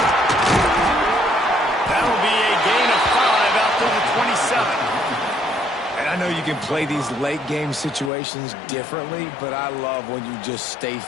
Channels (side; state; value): right; drops out; at 8.1 s